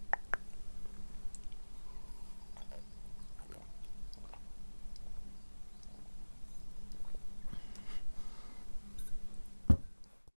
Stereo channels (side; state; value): both; inverted; correlation -1.00